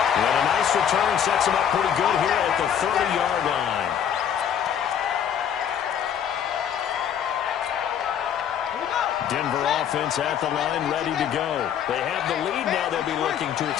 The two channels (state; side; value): quieter; right; 8.9 dB